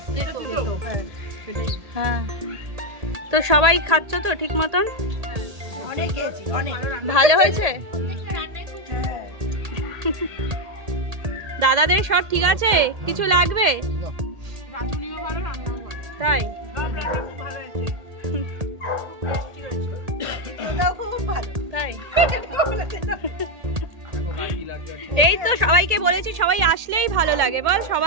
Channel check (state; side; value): late; left; 1.8 ms